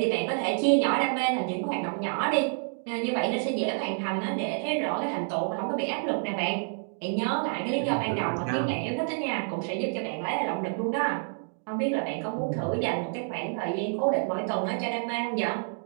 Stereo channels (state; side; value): silent; left; 59 dB below the other